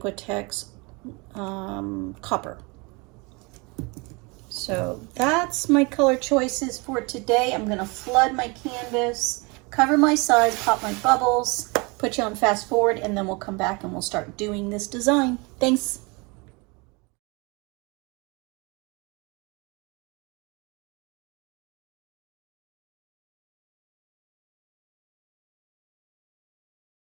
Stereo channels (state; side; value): quieter; left; 28.4 dB